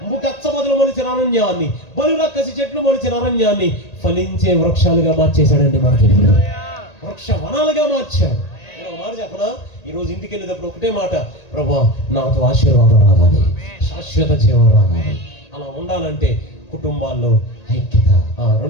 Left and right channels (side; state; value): right; late; 1.8 ms